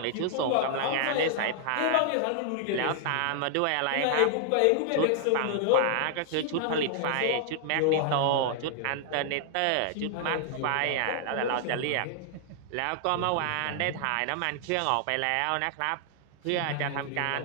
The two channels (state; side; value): different; both; correlation -0.01